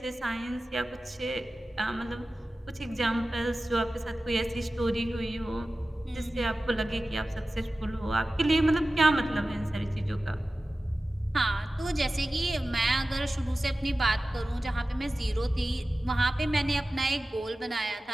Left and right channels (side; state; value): both; normal; correlation 0.95